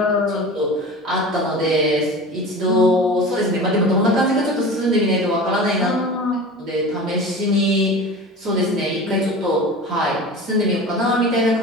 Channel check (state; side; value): normal; both; correlation 0.35